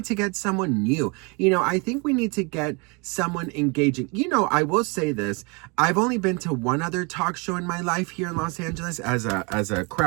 to get someone new. I think we need to get someone engaging. I will say this. I've only been to one other talk show in my life here in Los Angeles as a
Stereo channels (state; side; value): quieter; left; 30.8 dB